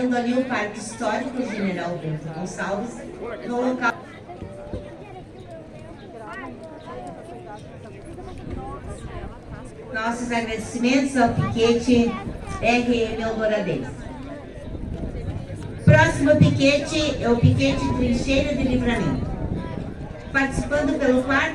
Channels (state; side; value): identical; both; correlation 1.00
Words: ali o Parque Histórico General Bento Gonçalves, no local. Nossos agradecimentos ao piquete RM Eldoradense. Próximo piquete é o piquete Trincheira de Livramento. Participando pelo